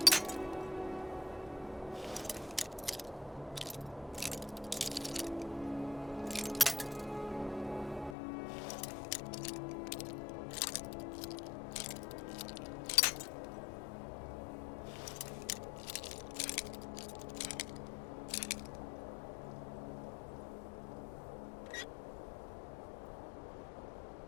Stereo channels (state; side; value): drops out; right; at 8.2 s